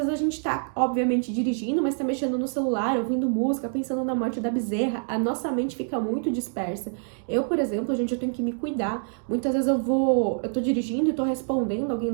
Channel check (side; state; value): left; silent; 61 dB below the other